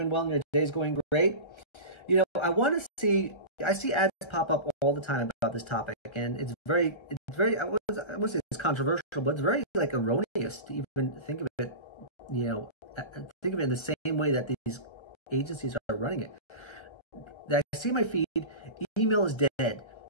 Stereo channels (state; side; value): late; right; 1.3 ms